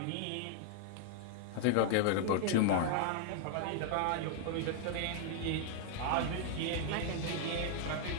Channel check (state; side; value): different; both; correlation -0.01